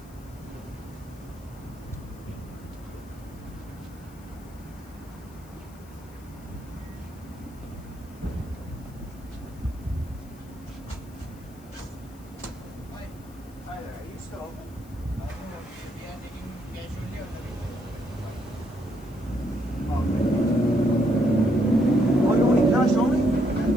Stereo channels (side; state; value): left; noise; hiss, 25 dB below the sound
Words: Oh, you only cash only?